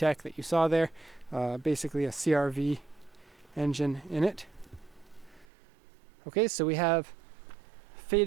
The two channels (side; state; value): left; drops out; at 5.5 s